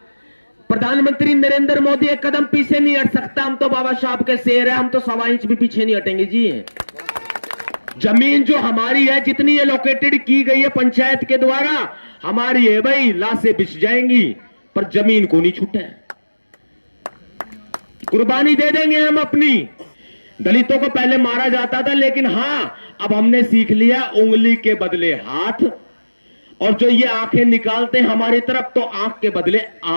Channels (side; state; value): both; inverted; correlation -1.00